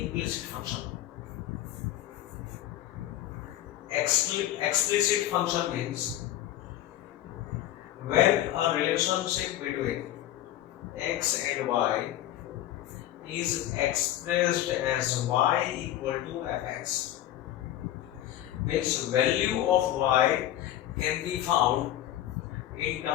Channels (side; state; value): right; quieter; 13.3 dB